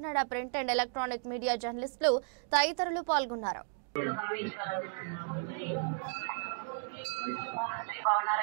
print and electronic media జర్నలిస్టులు తదితరులు పాల్గొన్నారు.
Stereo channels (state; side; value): silent; left; digital silence